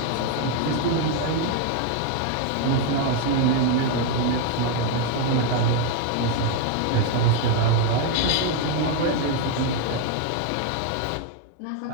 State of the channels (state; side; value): different; both; correlation 0.01